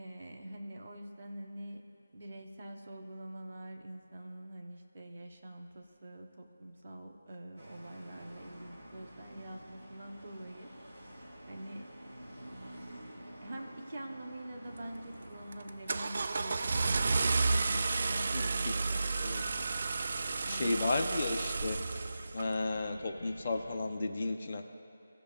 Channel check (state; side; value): inverted; both; correlation -0.92